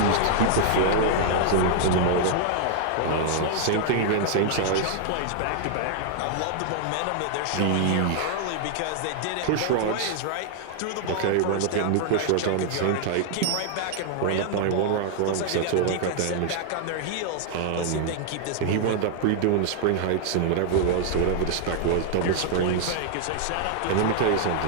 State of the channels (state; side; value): different; both; correlation 0.00